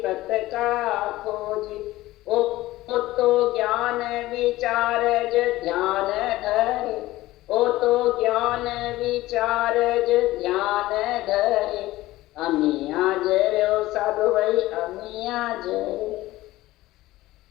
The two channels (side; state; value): right; quieter; 17.2 dB